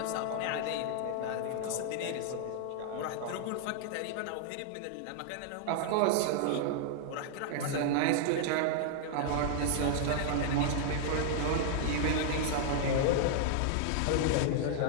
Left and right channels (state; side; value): different; both; correlation -0.01